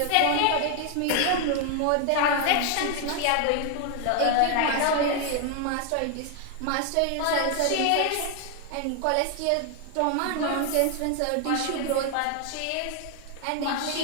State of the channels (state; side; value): different; both; correlation 0.00